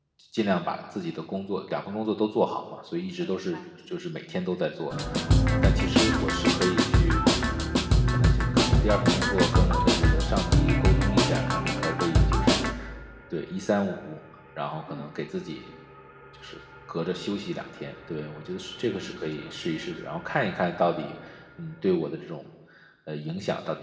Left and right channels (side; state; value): both; identical; correlation 1.00